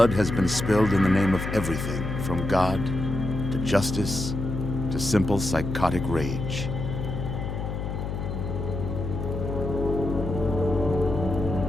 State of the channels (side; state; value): left; noise; hum, 4 dB below the sound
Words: has been spilled in the name of everything from God to justice to simple psychotic rage.